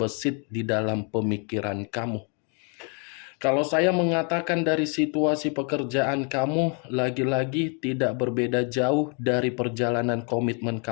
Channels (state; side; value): quieter; right; 37.5 dB